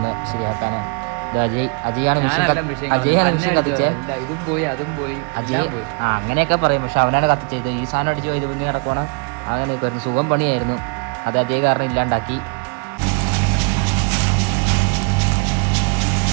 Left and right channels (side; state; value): left; quieter; 37.0 dB